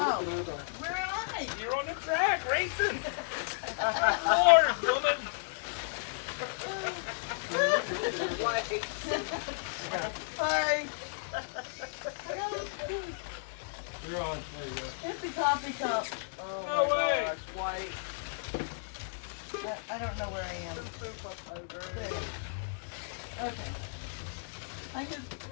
where am I? You're on the track racing. Lord, woman. White. Sorry. You're on. There you go. It's the coffee cup. Oh No my way. gosh, white. I don't know where I am. There. Okay. I just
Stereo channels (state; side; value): silent; right; digital silence